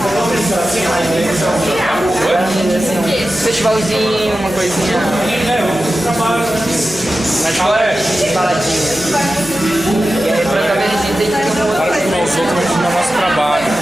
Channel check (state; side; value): noise; left; hum, 21 dB below the sound